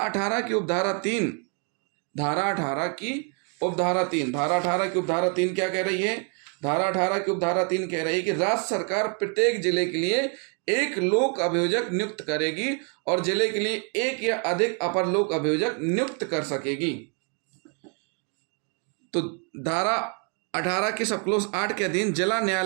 की उपधारा 3, धारा 18 की उपधारा 3, धारा 18 की उपधारा 3 क्या कह रही है? धारा 18 की उपधारा 3 कह रही है कि राज्य सरकार प्रत्येक जिले के लिए एक लोक अभियोजक नियुक्त करेगी और जिले के लिए एक या अधिक अपर लोक अभियोजक नियुक्त कर सकेगी। तो धारा 18 के सब क्लोज 8 के अधीन जिला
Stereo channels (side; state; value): left; quieter; 39.0 dB